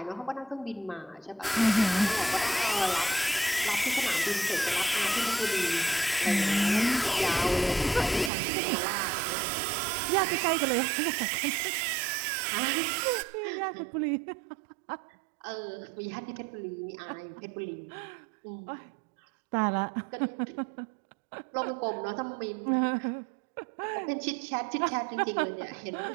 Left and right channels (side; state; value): left; drops out; at 8.3 s